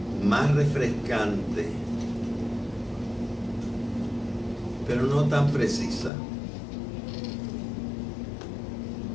más refrescante, pero no tan precisa.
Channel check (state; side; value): drops out; right; at 6.1 s